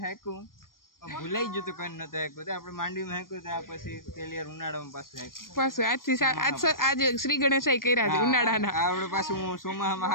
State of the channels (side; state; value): right; late; 0.91 ms